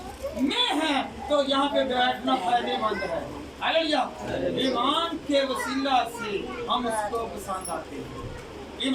में है तो यहाँ पे बैठना फायदेमंद है। हालेलुया। ईमान के वसीला से हम उसको पसंद आते हैं,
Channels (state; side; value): identical; both; correlation 1.00